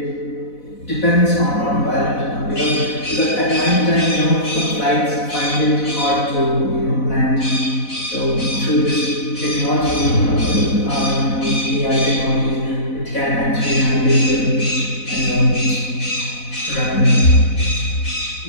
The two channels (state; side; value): late; right; 4.0 ms